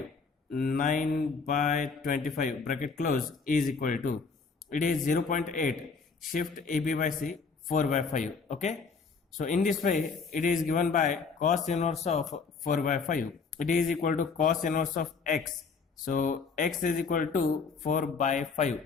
9 by 25 bracket close is equal to, it is 0.8, shift AB by C 4 by 5. Okay. So in this way it is given by cos inverse of 4 by 5. It is equal to cos inverse of x. So x is equal to 4 by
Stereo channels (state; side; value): quieter; right; 5.0 dB